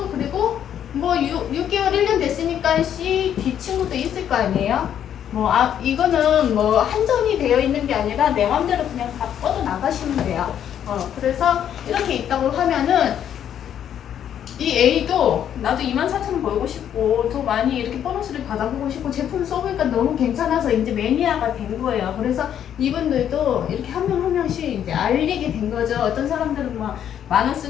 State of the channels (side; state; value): right; quieter; 9.7 dB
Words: 그리고 뭐 6개월 1년 됐으니까 C, D 친구도 있을 거 아니에요? 이거는 뭐 한정이 되어 있는 게 아니라 내 맘대로 그냥 다 뻗어 나가시면 돼요. 그래서 이렇게 있다고 하면은 이 A도 나도 24,000원 벌고 싶고 더 많이 이렇게 보너스를 받아보고 싶고 제품 써보니까 너무 괜찮아서 이제 매니아가 된 거예요. 그래서 이분들도 이렇게 한 명 한 명씩 이제 알리게 된 거죠. 어떤 사람들은 막 10,000원